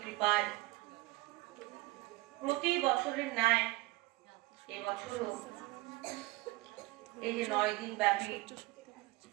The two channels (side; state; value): left; quieter; 20.4 dB